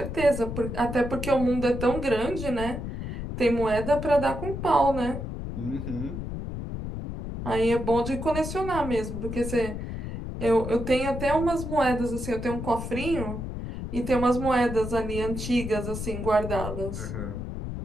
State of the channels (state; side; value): noise; left; rumble, 6 dB below the sound